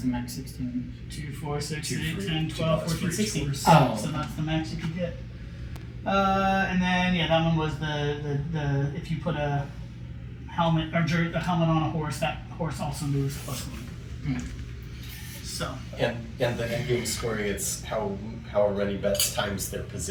the max 16? 2, 4, 6, Two 8, for- 10, 12, $2 for 14, each 16. horse. Oh. So that's the max you could get. And then that one was the if you put a helmet or a helmet on a horse, that horse also moves +1. So And the end game scoring, it's however many bets times their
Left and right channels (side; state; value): both; identical; correlation 1.00